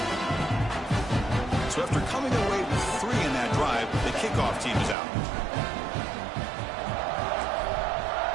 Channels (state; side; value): drops out; left; at 5.0 s